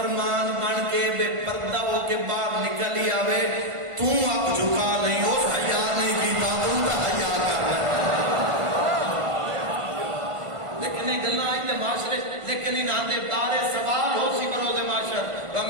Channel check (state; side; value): late; left; 1.5 ms